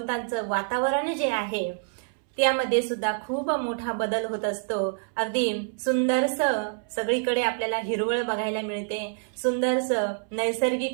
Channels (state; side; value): silent; left; 60 dB below the other